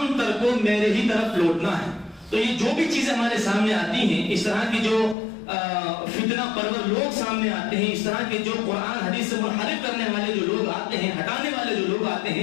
تر کو میرے ہی طرف لوٹنا ہے۔ تو یہ جو بھی چیزیں ہمارے سامنے آتی ہیں، اس طرح کی جو فتنہ پرور لوگ سامنے آتے ہیں، اس طرح کے جو قرآن حدیث سے منحرف کرنے والے جو لوگ آتے ہیں، ہٹانے والے جو لوگ آتے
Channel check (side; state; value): right; drops out; at 5.2 s